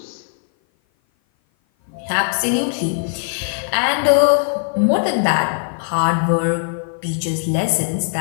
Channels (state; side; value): silent; right; 56 dB below the other